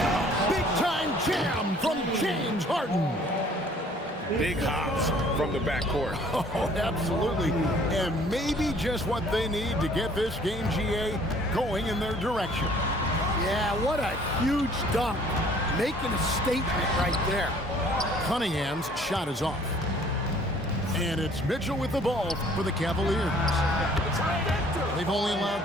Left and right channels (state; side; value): normal; both; correlation 0.56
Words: Big time jam from James Harden. Big hops from the backcourt. Oh, absolutely. And maybe just what they need to get this game, GA, going in their direction. Yeah, what a huge dunk. Making a statement right there. Cunningham's shot is off. And it's Mitchell with the ball for the Cavaliers. They've only allowed